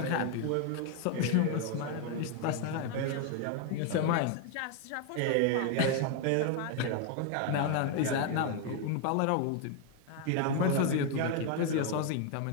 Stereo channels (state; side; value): different; both; correlation 0.01